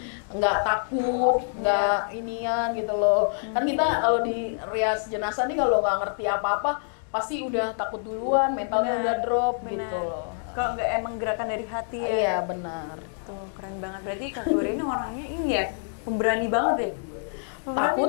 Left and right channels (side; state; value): right; silent; digital silence